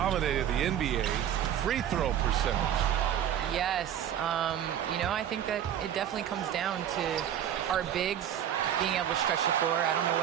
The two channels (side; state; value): left; quieter; 10.1 dB